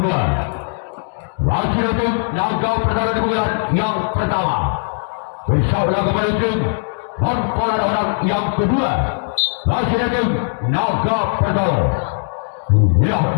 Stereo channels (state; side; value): silent; right; digital silence